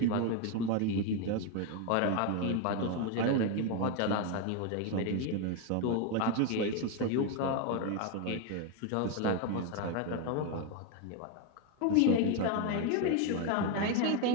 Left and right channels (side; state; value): both; different; correlation 0.02